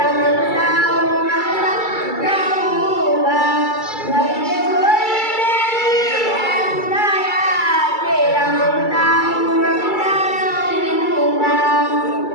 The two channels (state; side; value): late; right; 2.3 ms